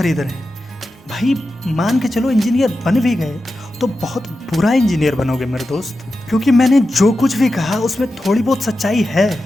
रहे हैं। भाई मान के चलो इंजीनियर बन भी गए तो बहुत बुरा इंजीनियर बनोगे मेरे दोस्त, क्योंकि मैंने जो कुछ भी कहा उसमें थोड़ी बहुत सच्चाई है।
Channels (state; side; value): normal; both; correlation 0.91